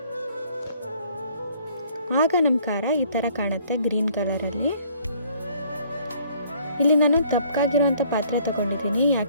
ಆಗ ನಮ್ಮ ಖಾರ ಈ ಥರ ಕಾಣುತ್ತೆ, ಗ್ರೀನ್ ಕಲರಲ್ಲಿ. ಇಲ್ಲಿ ನಾನು ದಪ್ಪಗಾಗಿರೋವಂಥ ಪಾತ್ರೆ ತೊಗೊಂಡಿದ್ದೀನಿ,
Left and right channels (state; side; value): inverted; both; correlation -0.60